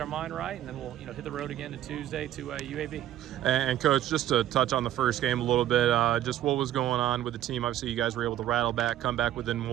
mind right, and then we'll hit the road again to Tuesday to UAB. And Coach, just to touch on the first game a little bit, just what was going on with the team? Obviously, you guys were able to rattle back, come back within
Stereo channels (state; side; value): quieter; left; 12.6 dB